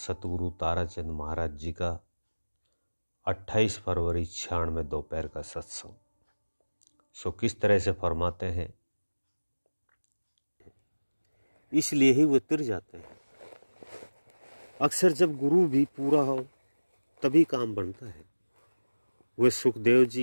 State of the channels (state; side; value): inverted; both; correlation -1.00